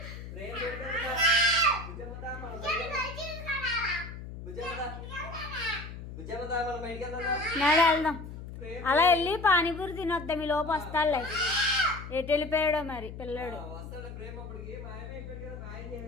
ప్రేమ్ లేడు కదా. బుజ్జమ్మదా మనం బయటికి వెళ్దాం. నాడు వెళ్దాం. అలా వెళ్ళి పానీపూరి తినొద్దాం. ఈ లోపు వస్తాడులే. ఎటు వెళ్ళిపోయాడో మరి పిల్లడు. వస్తాడు ప్రేమ అప్పటికి మాయమైపోయాడు కదా. మాయం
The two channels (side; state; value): left; noise; hum, 11 dB below the sound